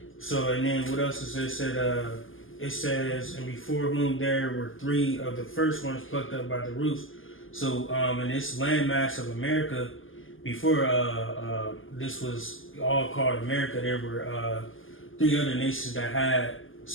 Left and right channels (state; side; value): late; right; 0.59 ms